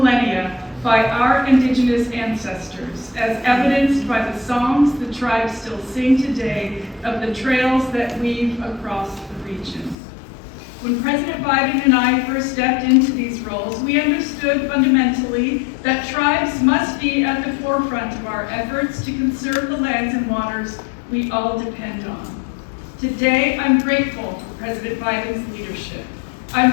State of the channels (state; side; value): drops out; right; at 10.0 s